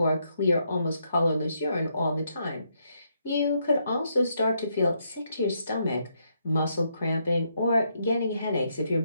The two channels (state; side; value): inverted; both; correlation -0.77